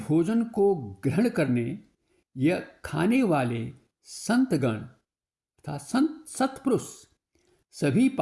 को ग्रहण करने या खाने वाले संतगण तथा संत सत्पुरुष सभी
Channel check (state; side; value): identical; both; correlation 1.00